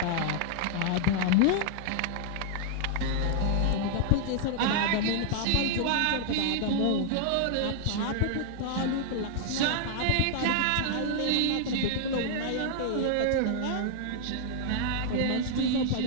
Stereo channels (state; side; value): different; both; correlation -0.01